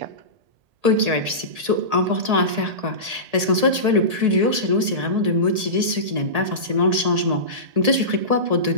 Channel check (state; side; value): late; left; 1.8 ms